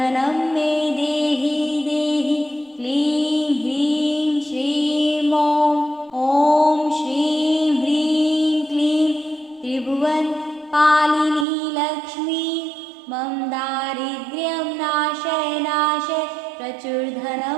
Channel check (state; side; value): drops out; left; at 11.5 s